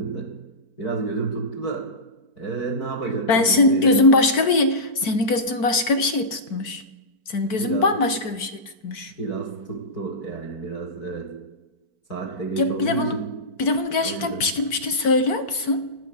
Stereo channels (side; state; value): right; late; 4.5 ms